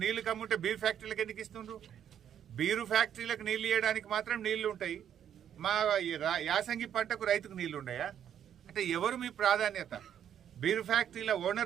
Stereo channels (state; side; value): quieter; left; 9.5 dB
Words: నీళ్లు కమ్ముంటే బీర్ ఫ్యాక్టరీలకు ఎందుకు ఇస్తుండ్రు? బీరు ఫ్యాక్టరీలకు నీళ్లు ఇవ్వడానికి మాత్రం నీళ్లు ఉంటాయి, మా యాసంగి పంటకు రైతుకు నీళ్లు ఉన్నాయా? అంటే ఎవరు మీ ప్రాధాన్యత? బీరు ఫ్యాక్టరీల